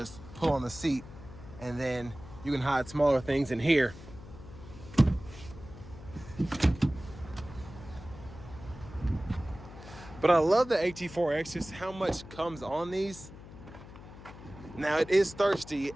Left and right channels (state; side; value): noise; left; hum, 16 dB below the sound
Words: pull on the seat, and then you can hide smaller things in here. But I love the AT4X, just how much comes on these. Now it is thirsty